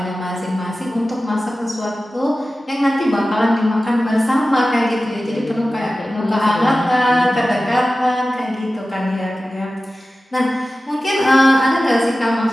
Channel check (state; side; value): normal; both; correlation 0.95